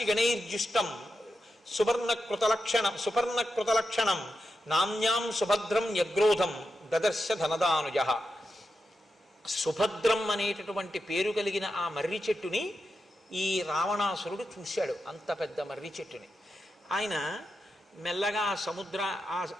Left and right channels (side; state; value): both; normal; correlation 0.88